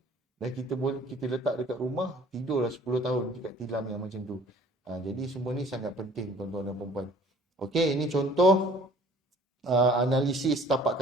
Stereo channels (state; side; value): normal; both; correlation 0.52